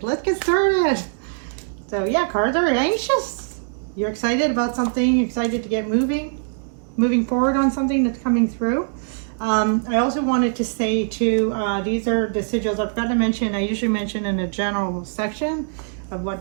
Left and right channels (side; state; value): left; silent; 64 dB below the other